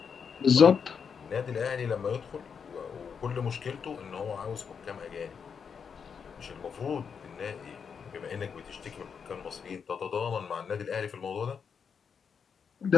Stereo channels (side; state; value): right; quieter; 6.5 dB